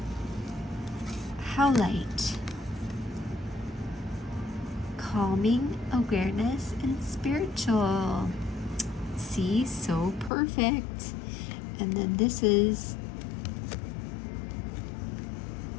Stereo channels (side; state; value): right; drops out; at 10.3 s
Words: How light, calming, awareness, and spiritual. See, so perfect. And then this is